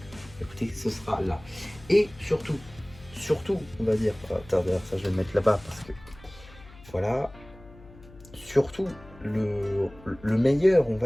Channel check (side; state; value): left; noise; hum, 21 dB below the sound